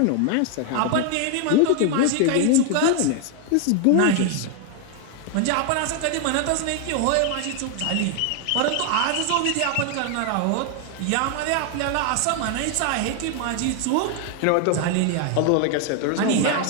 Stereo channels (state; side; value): different; both; correlation 0.00